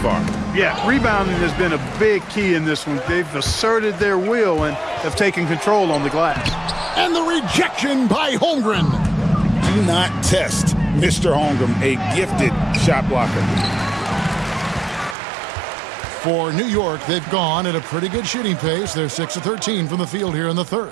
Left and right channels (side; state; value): left; drops out; at 15.2 s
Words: Yeah, rebounding has been a big key in this one. They've asserted their will and have taken control on the glass. And the rejection by Holmgren. Do not test Mr. Holmgren, a gifted shot blocker. For New York, they've gone at a pretty good shooting pace. They're 6 of 13 from the field here in the